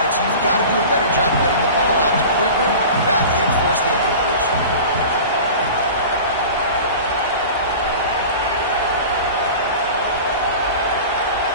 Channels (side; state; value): both; inverted; correlation -0.36